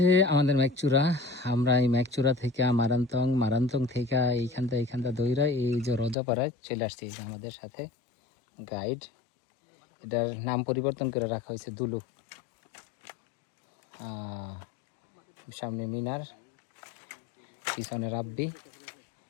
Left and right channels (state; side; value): drops out; right; at 6.2 s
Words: আমাদের ম্যাকচুরা। আমরা এই ম্যাকচুরা থেকে মারান্তং থেকে এইখানটা দইরা এই যে রজাপাড়ায় চলে আসছি। এই যে আমাদের সাথে গাইড, এটার নাম পরিবর্তন করে রাখা হয়েছে দুলু। সামনে মিনার, পিছনে রাব্বি।